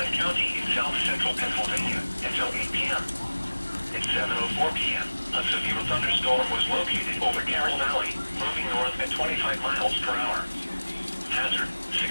County in south-central Pennsylvania until 8 p.m. At 7:04 p.m., a severe thunderstorm was located over Carroll Valley, moving north at 25 miles per hour. Hazard,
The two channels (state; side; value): inverted; both; correlation -1.00